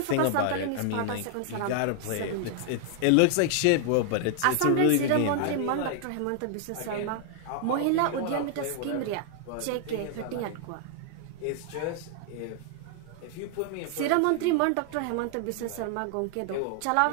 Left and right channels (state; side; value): different; both; correlation 0.00